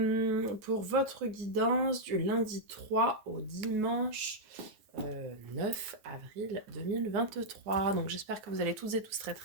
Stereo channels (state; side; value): late; left; 9.4 ms